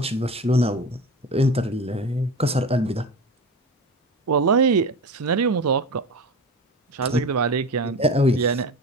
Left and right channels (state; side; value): normal; both; correlation 0.29